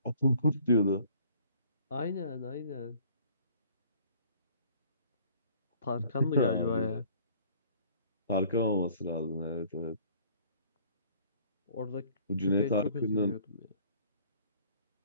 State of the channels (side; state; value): both; inverted; correlation -0.55